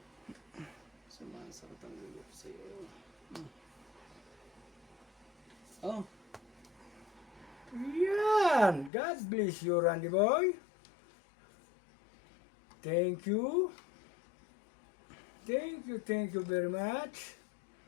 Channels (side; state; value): right; drops out; at 8.9 s